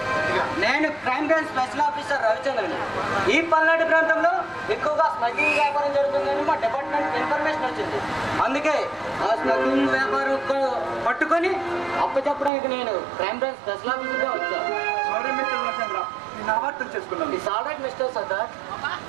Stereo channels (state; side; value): drops out; left; at 12.5 s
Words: నేను క్రైమ్ బ్రాంచ్ స్పెషల్ ఆఫీసర్ రవిచంద్రని ఈ పల్నాడు ప్రాంతంలో ఎక్కువగా స్మగ్లింగ్ వ్యాపారం జరుగుతుందని మా డిపార్ట్మెంట్ ఇన్ఫర్మేషన్ వచ్చింది అందుకే ఆ స్మగ్లింగ్ వ్యాపారం పట్టుకొని అప్పచెప్పడానికి నేను క్రైమ్ బ్రాంచ్ స్పెషల్ ఆఫీసర్గా వచ్చాను సారీ మిస్టర్ రవిచంద్ర నేను అపార్థం చేసుకున్నాను it's all right mister Sardar